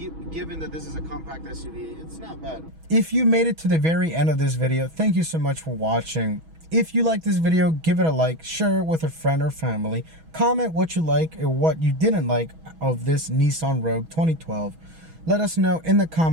given that this is a compact SUV, it's not bad. If you made it to the very end of this video, thank you so much for watching. If you like this video, give it a like, share it with a friend or family, comment what you like or what you didn't like of this Nissan Rogue 2012. Let us know in the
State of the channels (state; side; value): late; left; 6.2 ms